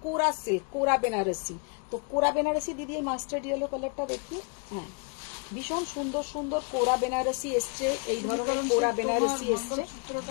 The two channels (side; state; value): right; quieter; 36.9 dB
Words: কোরা সিল্ক, কোরা বেনারসি। তো কোরা বেনারসি দিদি এই মাস্টার্ড ইয়েলো কালারটা দেখি, হ্যাঁ ভীষণ সুন্দর সুন্দর কোরা বেনারসি এসছে, এই ধরনের কোরা বেনারসি এসছে।